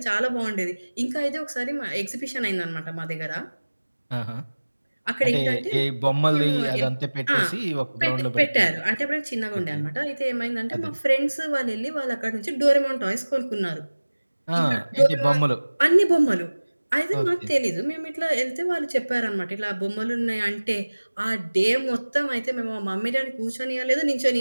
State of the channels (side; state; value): both; inverted; correlation -1.00